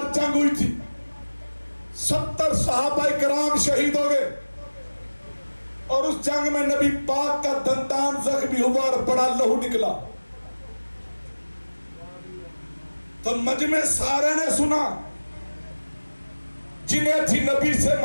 जंग हुई थी, 70 सहाबा कराम शहीद हो गए और उस जंग में नबी पाक का दंतान जख्मी हुआ और बड़ा लहू निकला। तो मजमे सारे ने सुना, जिन्हें थी नबी से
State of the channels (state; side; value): inverted; both; correlation -1.00